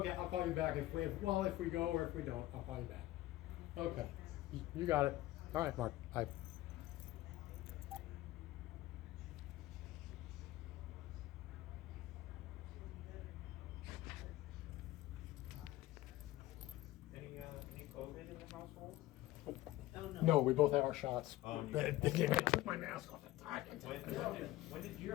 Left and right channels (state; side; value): quieter; right; 16.4 dB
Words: I'll call you back if we go or if we don't, I'll call you back. Okay, you got it. All right, Mark. Bye. Any COVID in the household? Oh, no. No, we both have our shots. Oh, and I took my mask off. When did you